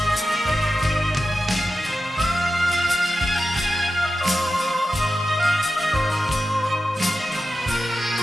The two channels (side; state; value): both; normal; correlation 0.92